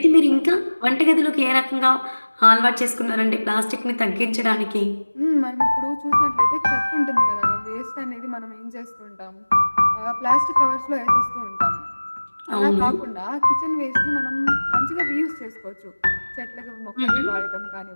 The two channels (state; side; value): inverted; both; correlation -1.00